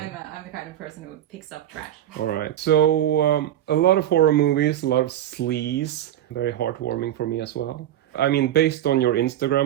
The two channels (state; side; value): quieter; left; 11.8 dB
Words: the kind of person who picks up trash. All right. So a lot of horror movies, a lot of sleaze. Very heartwarming for me as well. I mean, based on your